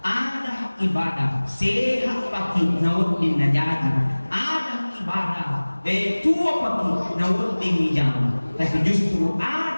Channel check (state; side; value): inverted; both; correlation -1.00